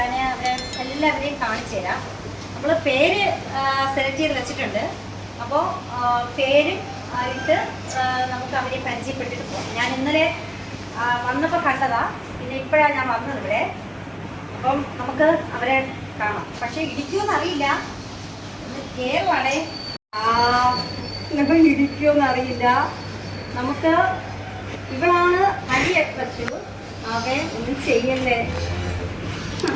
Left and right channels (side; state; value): both; identical; correlation 1.00